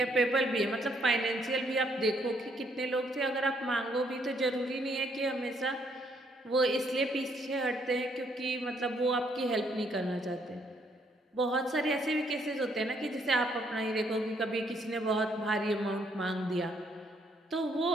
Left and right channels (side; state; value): both; normal; correlation 0.70